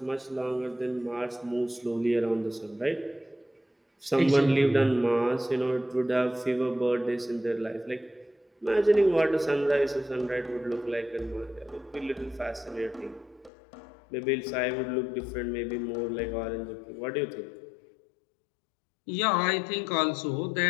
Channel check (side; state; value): right; drops out; at 13.5 s